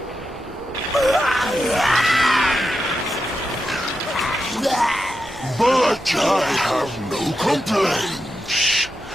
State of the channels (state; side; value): normal; both; correlation 0.88